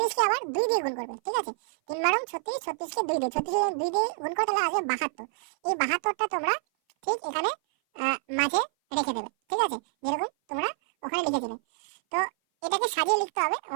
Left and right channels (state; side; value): silent; left; 57 dB below the other